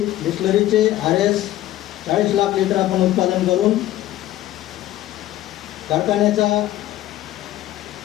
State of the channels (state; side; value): quieter; right; 14.3 dB